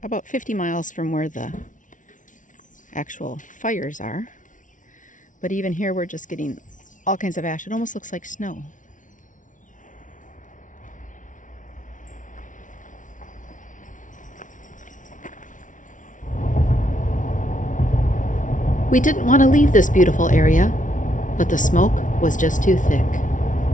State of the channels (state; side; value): late; right; 0.37 ms